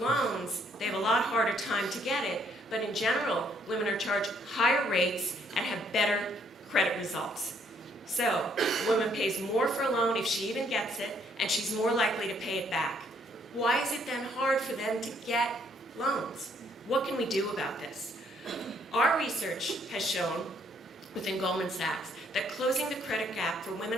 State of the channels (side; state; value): both; normal; correlation 0.68